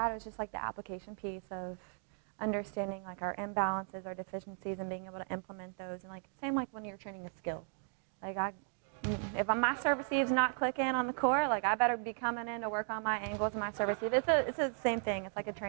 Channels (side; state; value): left; silent; 54 dB below the other